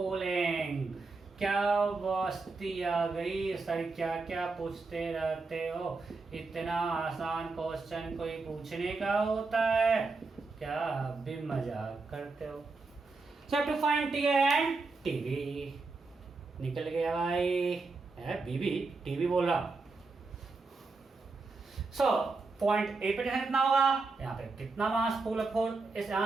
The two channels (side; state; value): left; quieter; 3.9 dB